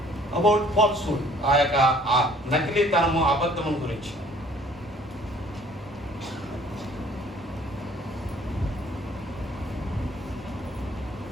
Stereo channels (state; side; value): normal; both; correlation 0.56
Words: about falsehood. ఆ యొక్క ఆ నకిలీతనము, అబద్ధము గురించి.